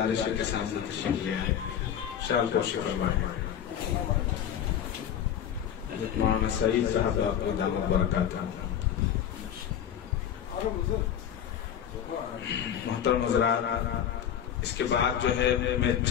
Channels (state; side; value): quieter; right; 9.5 dB